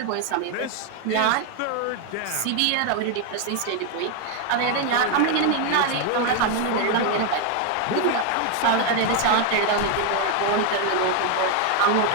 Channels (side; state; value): both; different; correlation 0.01